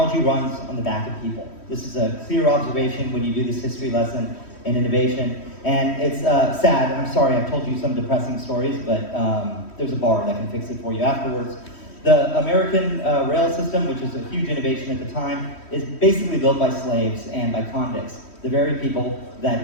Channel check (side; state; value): right; late; 3.1 ms